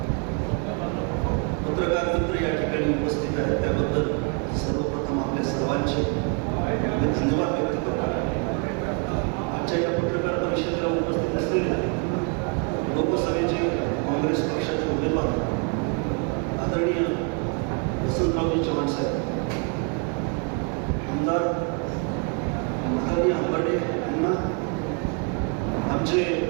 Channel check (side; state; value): left; quieter; 35.8 dB